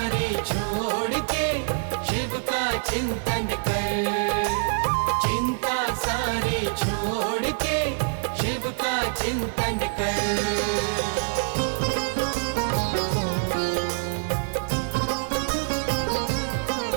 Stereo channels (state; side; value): silent; left; 56 dB below the other